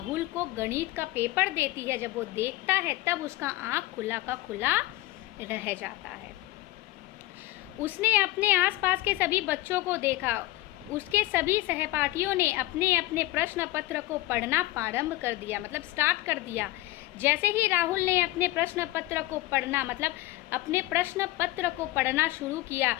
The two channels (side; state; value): right; quieter; 18.2 dB